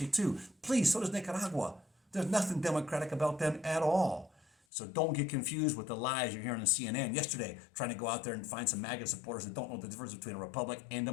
too. Please, so does Nicaragua. There's nothing democratic about them at all. So don't get confused with the lies you're hearing on CNN yesterday, trying to go out there and find some MAGA supporters that don't know the difference between a republic and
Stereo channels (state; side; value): drops out; right; at 4.5 s